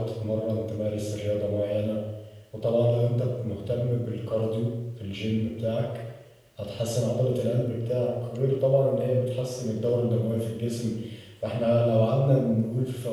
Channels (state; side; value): identical; both; correlation 1.00